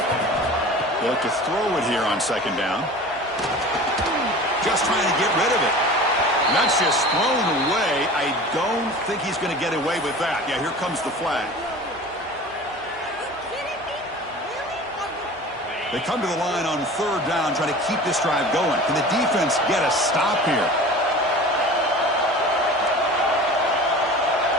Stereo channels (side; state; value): both; normal; correlation 0.38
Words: They look to throw it here on second down. Just trying to get rid of it. And that's just thrown away. I don't think he's going to get away with that. Yeah, here comes the flag. They come to the line on third down, trying to keep this drive going. Can the defense get a stop here?